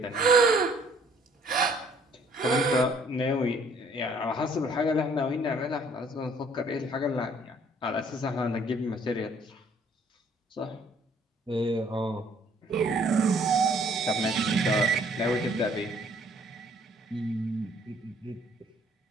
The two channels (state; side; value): normal; both; correlation 0.61